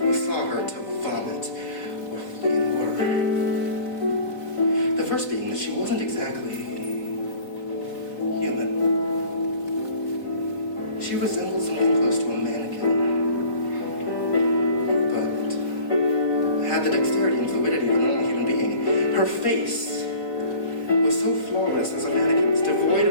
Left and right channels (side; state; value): right; late; 4.4 ms